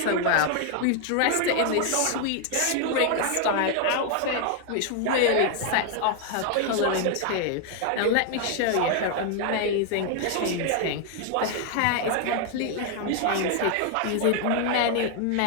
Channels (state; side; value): different; both; correlation 0.00